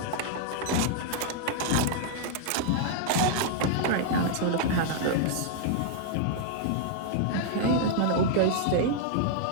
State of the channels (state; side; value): different; both; correlation -0.01